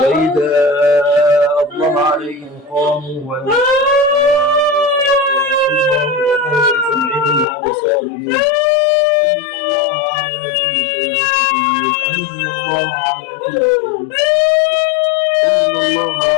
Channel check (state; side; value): drops out; right; at 7.5 s